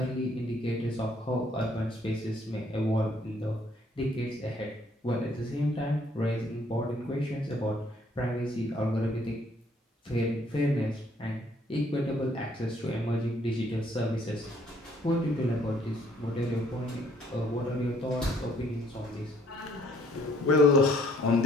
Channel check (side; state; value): both; normal; correlation 0.63